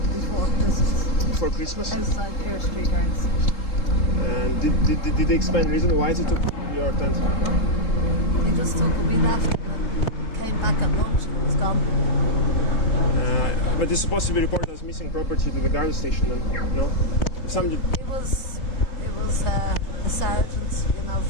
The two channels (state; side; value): late; right; 3.7 ms